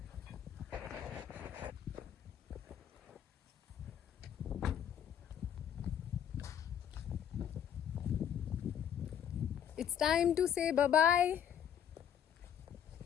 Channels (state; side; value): quieter; right; 9.0 dB